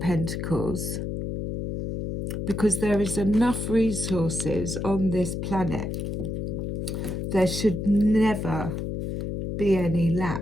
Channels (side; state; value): left; noise; hum, 4 dB below the sound